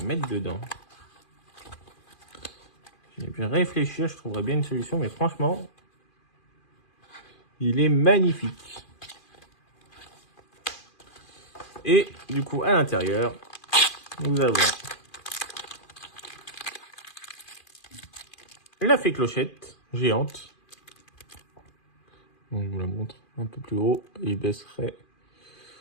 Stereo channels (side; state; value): right; late; 2.4 ms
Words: mettre dedans? J'ai pu réfléchir, je trouverais bien une solution, mais franchement, il est magnifique. Et du coup, à l'intérieur, nous avons la fée clochette géante. Donc, je vous la montre un peu plus haut. Il baisserait